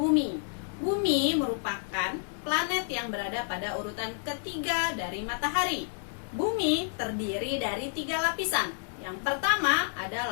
Bumi merupakan planet yang berada pada urutan ketiga dari matahari. Bumi terdiri dari 3 lapisan. Yang pertama ada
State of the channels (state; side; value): silent; right; 58 dB below the other